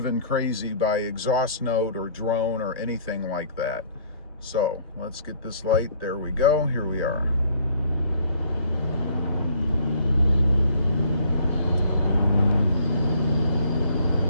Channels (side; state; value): both; inverted; correlation -0.58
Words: crazy by exhaust note or drone or anything like that. So let's get this light. There we go. Here we are.